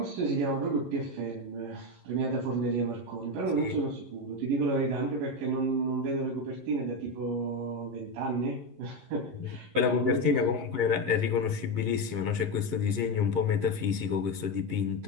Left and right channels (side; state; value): left; late; 11 ms